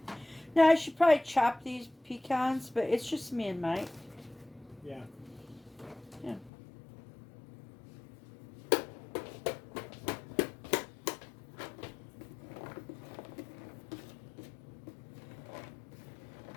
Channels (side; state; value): right; drops out; at 6.5 s